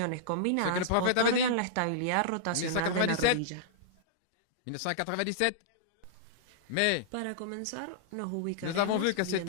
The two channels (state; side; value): different; both; correlation -0.02